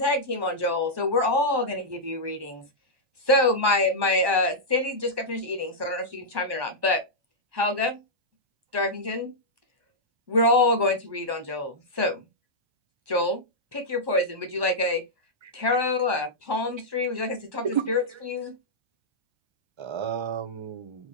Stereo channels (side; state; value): left; late; 1.1 ms